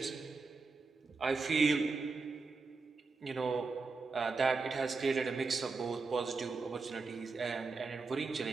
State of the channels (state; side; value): quieter; left; 4.2 dB